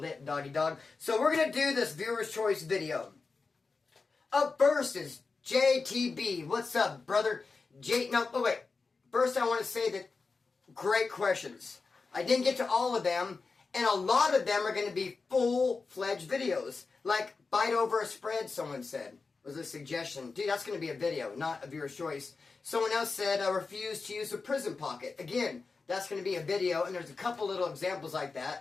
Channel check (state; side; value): quieter; right; 4.3 dB